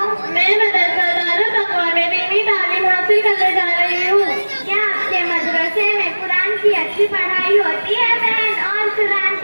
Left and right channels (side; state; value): both; inverted; correlation -1.00